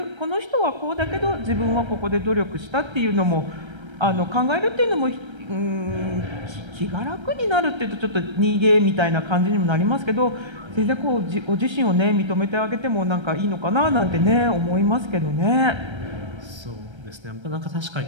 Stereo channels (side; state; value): left; late; 1.3 ms